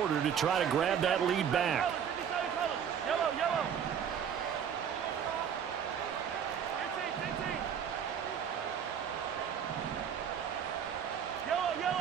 to try to grab that lead back. Yellow, yellow. Yellow,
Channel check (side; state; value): left; quieter; 8.1 dB